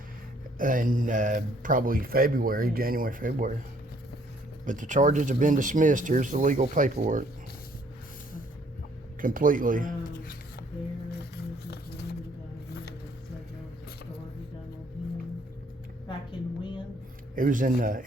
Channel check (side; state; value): both; normal; correlation 0.63